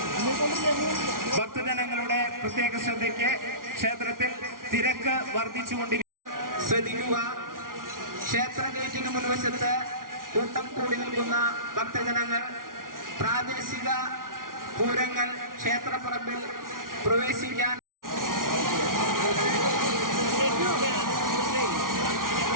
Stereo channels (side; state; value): left; late; 0.90 ms